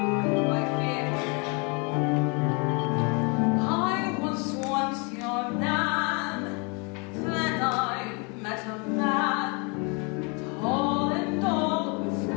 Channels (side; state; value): right; quieter; 32.4 dB